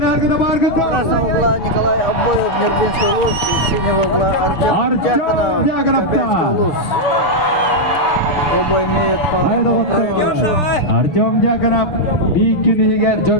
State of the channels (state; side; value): late; right; 6.6 ms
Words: Баргатов. Красного угла Николай Обоев, Нербинский улус. Синего угла Артем Дьяконов, Кобельский улус. Оба имеют по одному проигрышу. Артем Дьяконов Бикинигер